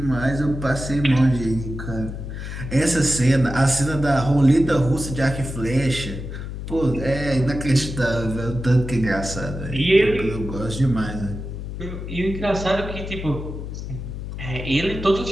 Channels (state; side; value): noise; left; hum, 7 dB below the sound